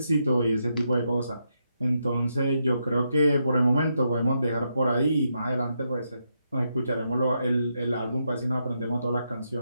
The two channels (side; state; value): both; inverted; correlation -0.81